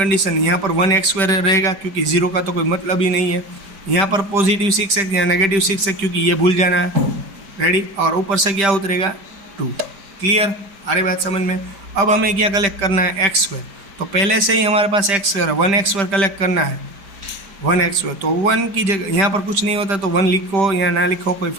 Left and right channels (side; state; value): left; late; 5.1 ms